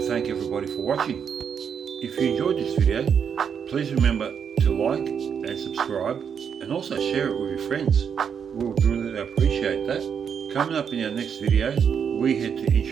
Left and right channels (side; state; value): left; quieter; 7.3 dB